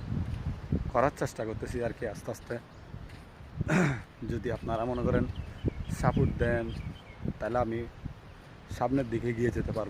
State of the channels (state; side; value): identical; both; correlation 1.00